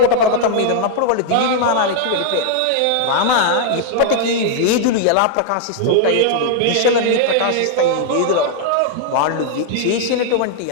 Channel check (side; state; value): both; different; correlation 0.00